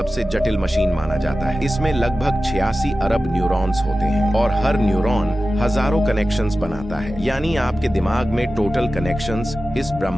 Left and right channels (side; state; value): both; normal; correlation 0.94